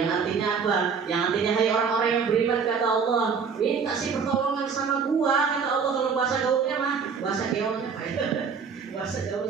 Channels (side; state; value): left; quieter; 6.0 dB